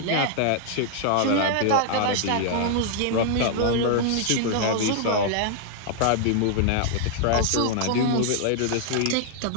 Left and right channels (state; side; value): different; both; correlation -0.01